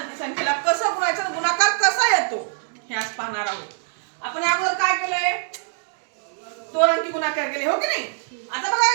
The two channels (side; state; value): left; silent; digital silence